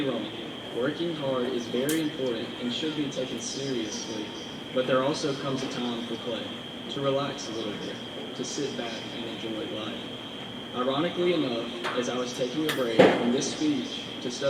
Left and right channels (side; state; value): both; identical; correlation 1.00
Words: wrong, working hard is very important and should be taken seriously, but there also comes a time for play, to relax a little bit, to sit back and enjoy life. Ironically enough, as I was taking a break from this speech to